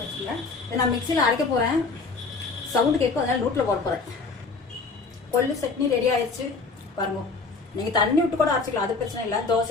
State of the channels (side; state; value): right; quieter; 4.2 dB